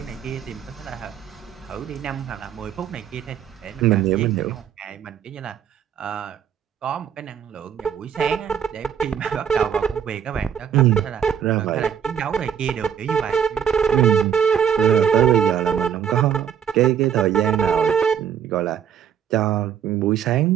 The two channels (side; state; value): left; quieter; 8.5 dB